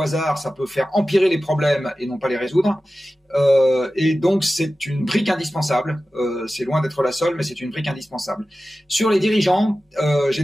ça peut faire empirer les problèmes et non pas les résoudre. Et donc c'est une brique indispensable. C'est loin d'être la seule, mais c'est une brique indispensable. Sur les dirigeants, j'ai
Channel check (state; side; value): normal; both; correlation 0.95